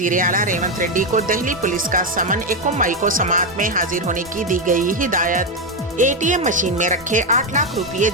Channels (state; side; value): normal; both; correlation 0.07